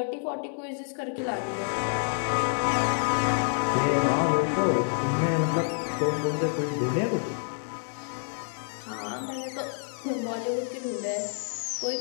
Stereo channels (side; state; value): right; silent; 59 dB below the other